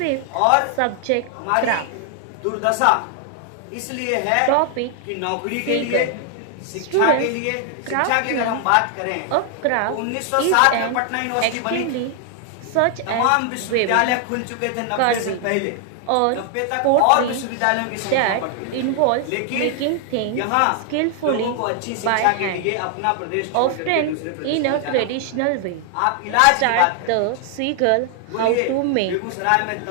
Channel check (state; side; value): different; both; correlation 0.00